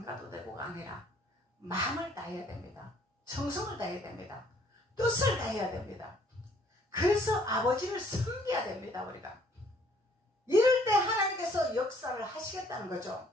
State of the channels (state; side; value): normal; both; correlation 0.62